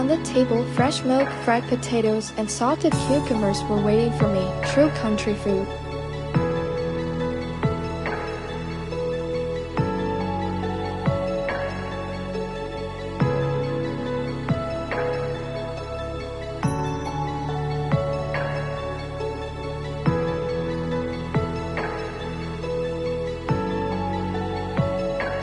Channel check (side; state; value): both; identical; correlation 1.00